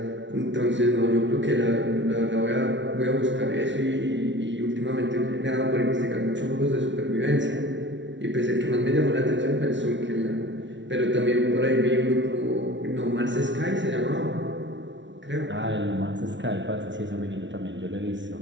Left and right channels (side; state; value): left; late; 0.54 ms